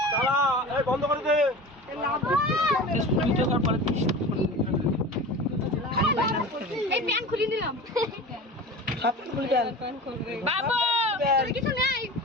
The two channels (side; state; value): both; normal; correlation 0.33